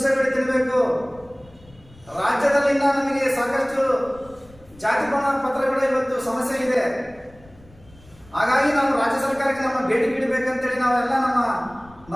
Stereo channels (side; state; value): left; noise; rumble, 25 dB below the sound